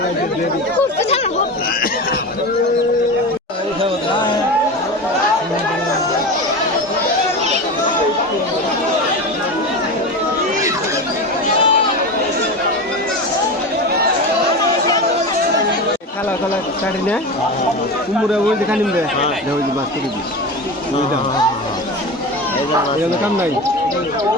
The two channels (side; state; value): both; normal; correlation 0.25